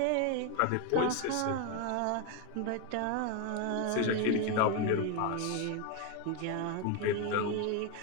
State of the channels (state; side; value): different; both; correlation 0.01